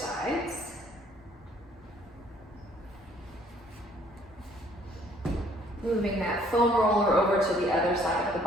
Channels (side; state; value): both; normal; correlation 0.61